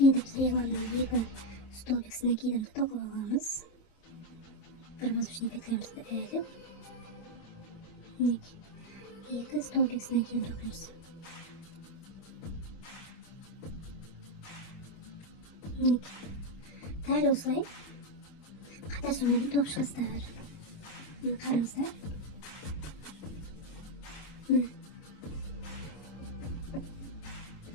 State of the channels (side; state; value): right; late; 25 ms